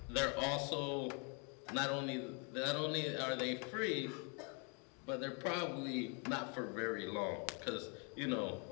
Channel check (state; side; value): quieter; right; 35.8 dB